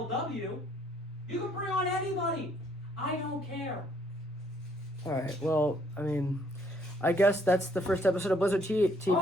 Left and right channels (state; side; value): normal; both; correlation 0.65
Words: You can bring on anybody. I don't care. All right. Well, I mean, I guess that's the first episode of Blizzard TV,